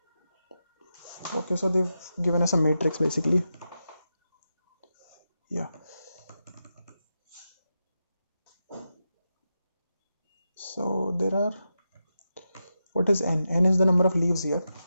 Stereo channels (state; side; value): inverted; both; correlation -0.89